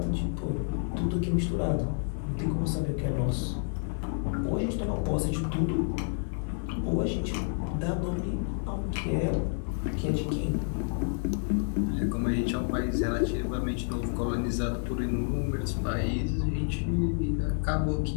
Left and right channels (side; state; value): right; silent; 58 dB below the other